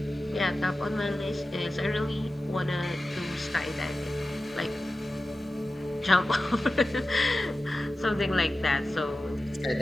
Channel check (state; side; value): normal; both; correlation 0.94